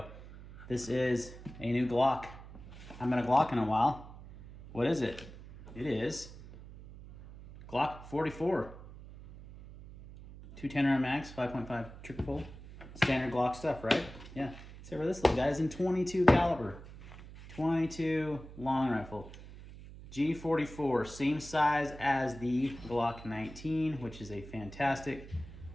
This is a new Glock. I haven't had a Glock in a while. What is it? It is Glock 44. 210 round mags, 5.5 trigger pull. Standard Glock stuff, right? Yeah. Except for this little guy is in 22 caliber. 22 long rifle. G44, same size as the Glock 19, which is a fantastic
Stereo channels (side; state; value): right; noise; hum, 16 dB below the sound